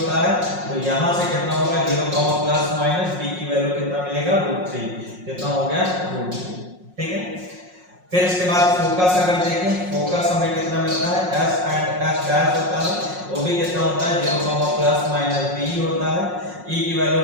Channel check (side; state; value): left; late; 5.5 ms